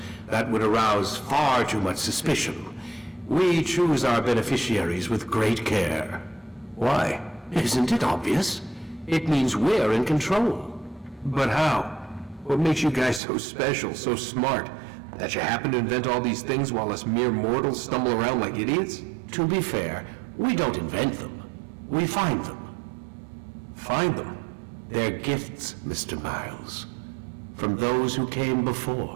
That would arouse far too much suspicion. We choose our beneficiaries with great care. Why? Isn't it obvious? It means we're in control. But how? What makes you guys so special, so smart? That you happen to invent all these things while us mere mortals stumble around like idiots? To be fair, we don't invent them. We find them. Find them? They're gifts, Mr. Miles. From those who came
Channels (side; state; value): left; drops out; at 13.2 s